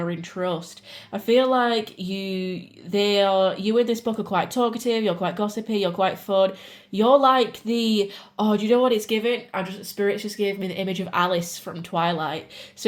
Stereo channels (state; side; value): identical; both; correlation 1.00